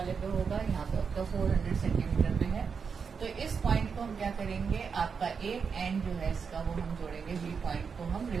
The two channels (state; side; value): quieter; left; 5.9 dB